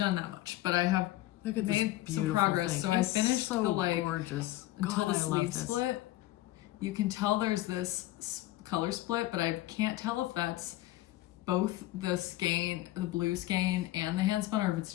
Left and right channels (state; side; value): quieter; right; 16.3 dB